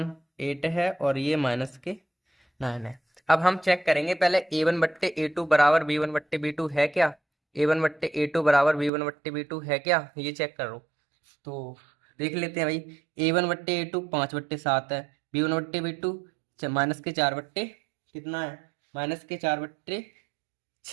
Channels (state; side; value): drops out; left; at 8.9 s